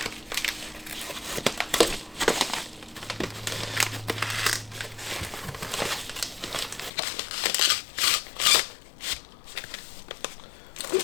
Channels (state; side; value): drops out; right; at 6.9 s